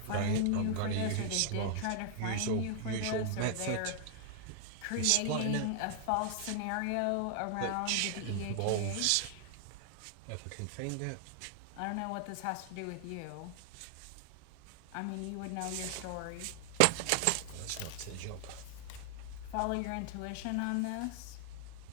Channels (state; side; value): different; both; correlation 0.00